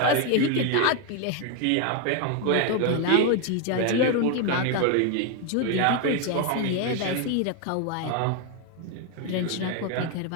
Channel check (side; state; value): both; different; correlation 0.01